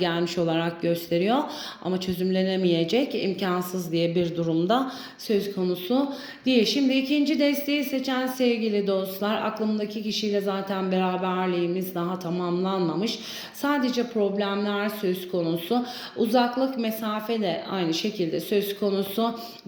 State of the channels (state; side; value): identical; both; correlation 1.00